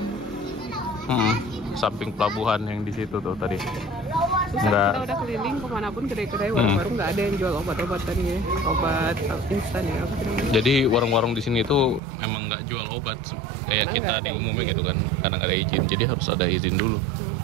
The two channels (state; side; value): drops out; left; at 12.0 s